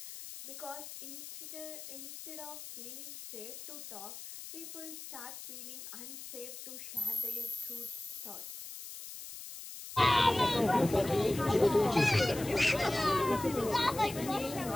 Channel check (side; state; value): left; noise; hiss, 11 dB below the sound